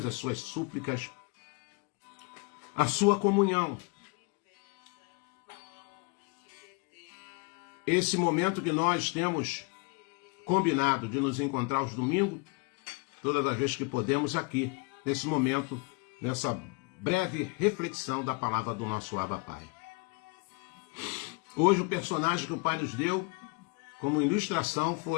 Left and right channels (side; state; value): right; quieter; 30.5 dB